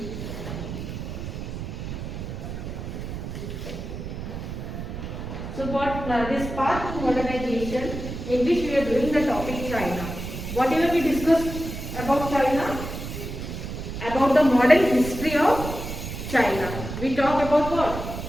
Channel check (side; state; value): right; noise; rumble, 7 dB below the sound